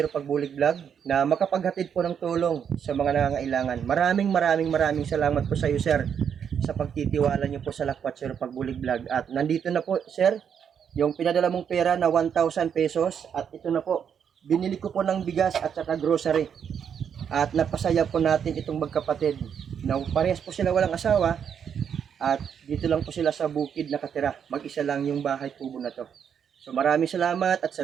Pagbulig Vlog na makapaghatid po ng tulong sa mga nangangailangan. Maraming salamat po sa iyo sir sa pagtitiwala niyo po sa Lakwat Zero Pagbulig Vlog. At nandito na po sir yung pinadala mong pera na 1,000 pesos at ito na po, binili ko po ng bigas at saka grocery. At napasaya po natin itong magkapatid na parehas po sila walang asawa at dito lang po sila sa bukid nakatira. Mag-isa lang yung bahay kubo na to. So maraming salamat at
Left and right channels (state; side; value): quieter; left; 7.8 dB